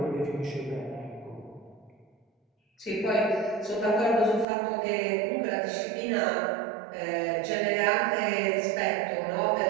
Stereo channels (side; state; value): left; drops out; at 4.5 s